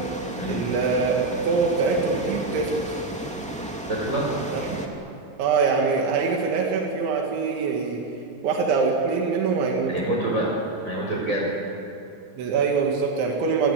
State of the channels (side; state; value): left; quieter; 3.7 dB